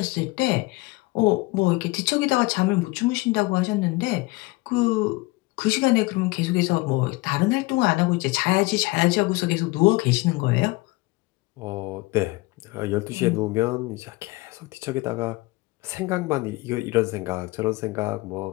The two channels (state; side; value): quieter; right; 22.5 dB